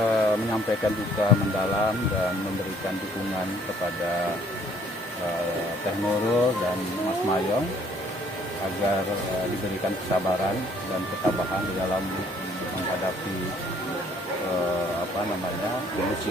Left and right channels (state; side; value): normal; both; correlation 0.62